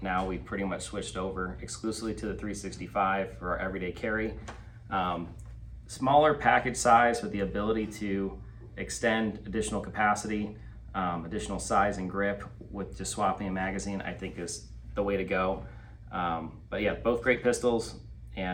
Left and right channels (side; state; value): both; identical; correlation 1.00